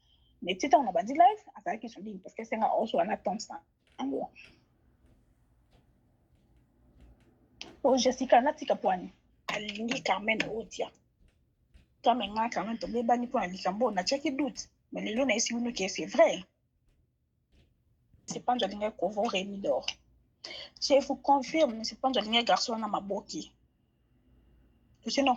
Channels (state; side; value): identical; both; correlation 1.00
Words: mais tita on a bandi live azaki sur ligne parce que c'est nga also en attente ça ango. Oh Jessica natika poani alingi Carmen odia Carmen nga Carmen to bebani po alikambo na cheki doute mais lelo na esi uno que c'est vrai c'est pas de linga covo Rémi d'or je vous confirme c'est pas de linga garçon na maboki to se non